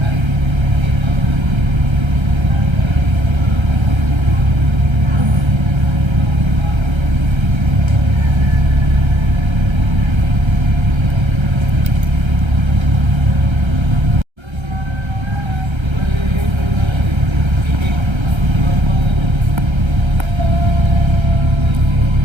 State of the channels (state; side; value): late; left; 1.3 ms